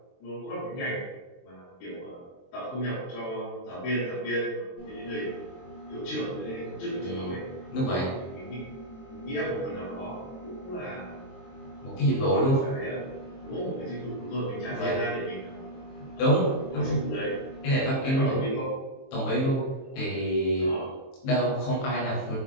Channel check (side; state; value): right; late; 23 ms